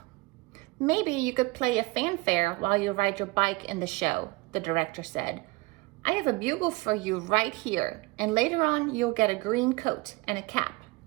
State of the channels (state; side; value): quieter; left; 22.8 dB